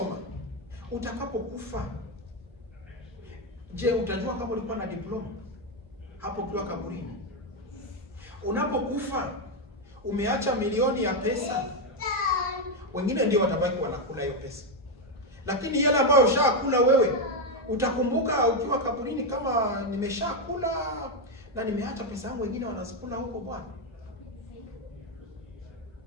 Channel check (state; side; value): normal; both; correlation 0.05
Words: Utakapokufa, je, utajua kama ulikuwa na diploma hapo ukiwa kaburini? Unapokufa, umeacha milioni ya pesa, wengine ndio watabaki wanakula hiyo pesa. Lakini yale ambayo ushakula wewe, utakumbuka ukiwa kaburini kama nimeshakula na nimeacha pesa yangu, wengine wanazikula huko bwana.